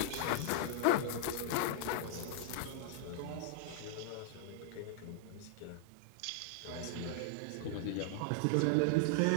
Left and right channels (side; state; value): both; different; correlation -0.01